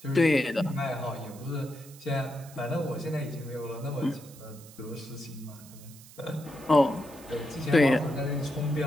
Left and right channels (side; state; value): right; noise; hiss, 20 dB below the sound